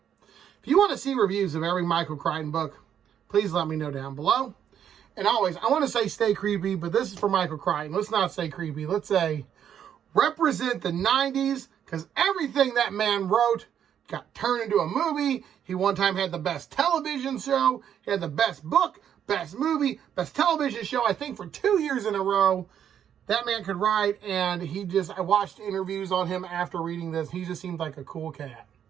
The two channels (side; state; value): left; quieter; 9.1 dB